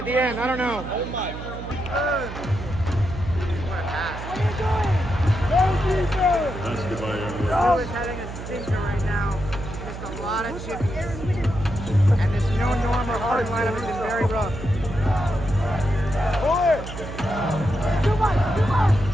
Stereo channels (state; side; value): noise; right; hum, 10 dB below the sound